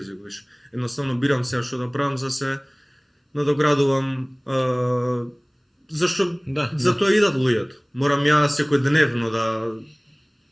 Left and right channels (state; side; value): identical; both; correlation 1.00